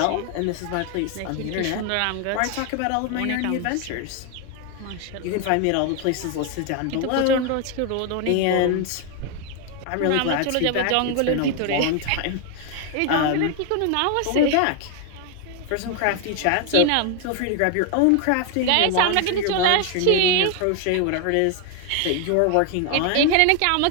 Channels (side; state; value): both; different; correlation 0.01